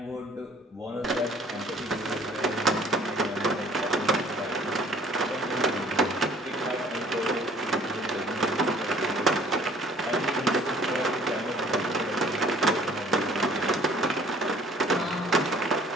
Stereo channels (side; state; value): both; normal; correlation 0.54